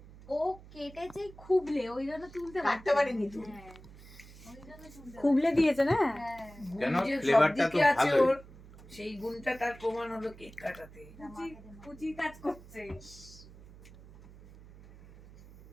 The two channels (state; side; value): noise; right; hum, 20 dB below the sound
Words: ও কেটেছে খুবলে, ওই জন্য তুলতে কাটতে পারিনি তো। হ্যাঁ, ওই জন্য তুলতে খুবলে দিয়েছে না? হ্যাঁ, কেন? যে ফ্লেভারটা তো সবদিকে আছে ভালোই। ওর, সেই গুণটা তার প্রমাণ হলো কেক কাটাতে। কুচি কাজ করছে।